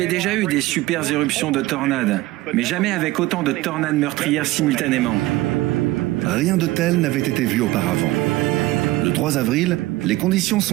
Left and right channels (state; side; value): quieter; left; 18.3 dB